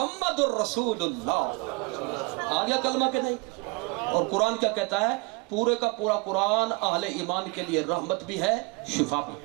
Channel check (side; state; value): left; quieter; 28.6 dB